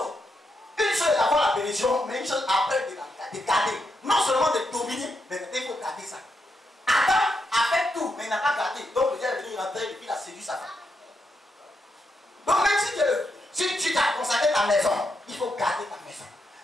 Une chose est d'avoir la bénédiction, mais une chose après de garder. Non seulement de dominer, mais il faut garder ça. Adam a fait tout, mais il n'a pas gardé. Donc le Dieu est venu rentrer et puis il a séduit sa femme. Donc même si tu t'as consacré ta maison, il faut garder ta maison.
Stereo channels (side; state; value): both; normal; correlation 0.82